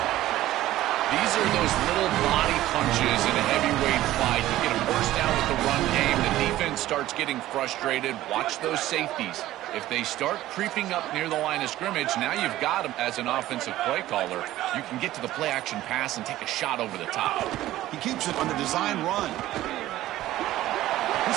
These are those little body punches in a heavyweight fight. You get a first down with the run game. The defense starts getting frustrated. Watch those safeties. If they start creeping up near the line of scrimmage, now you've got them as an offensive play caller. You can get to the play-action pass and take a shot over the top. He keeps it on the design run.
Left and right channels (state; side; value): quieter; left; 14.9 dB